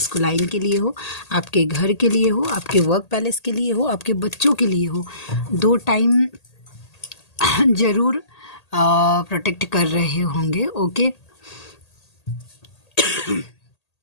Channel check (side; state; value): right; late; 1.8 ms